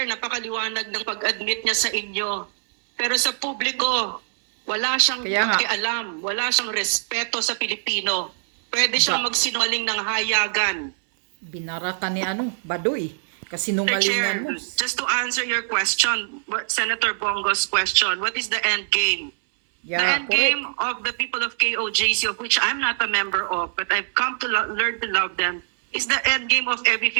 napakaliwanag ng pag-admit niya sa inyo. Pero sa publiko, wala siyang pakialam, wala siyang respeto sa Pilipino. Pwede siyang magsinungaling ng hayagan. Binara ka ni Baduy. Kasinungalingan mo. Just to answer your question, Senator Bongo's question, what is the end game? Yeah, the end correct. game of the people of KOJC, of which I'm not a member of, but I've come to learn to love them, is the end game of every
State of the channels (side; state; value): left; silent; 62 dB below the other